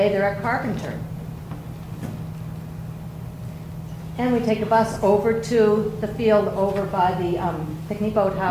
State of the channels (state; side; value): identical; both; correlation 1.00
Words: they're at Carpenter. And we take a bus over to the field over by the picnic